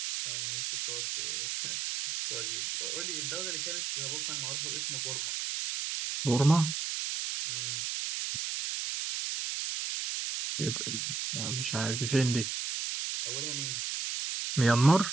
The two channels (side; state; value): right; noise; hiss, 2 dB below the sound